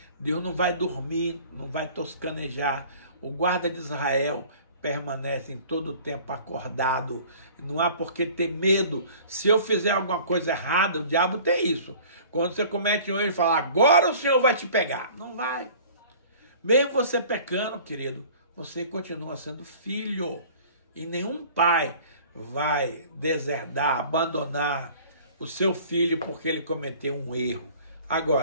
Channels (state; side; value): inverted; both; correlation -0.47